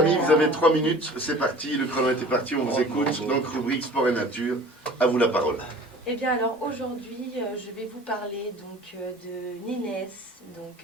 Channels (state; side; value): normal; both; correlation 0.44